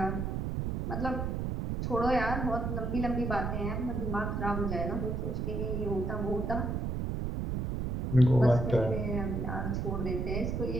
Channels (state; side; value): noise; right; rumble, 2 dB below the sound